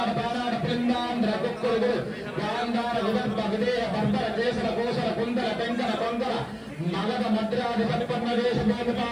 बानाड पिंडांध्र कुक्कुलु गांधार विदर्भ विदेह बर्बर केसर कोसर कुंदर तेंकन कोंकण मगध मद्रादि संपन्न देश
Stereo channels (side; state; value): both; identical; correlation 1.00